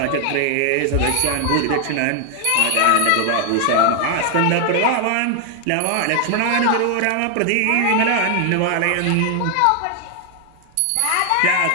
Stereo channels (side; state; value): both; different; correlation 0.00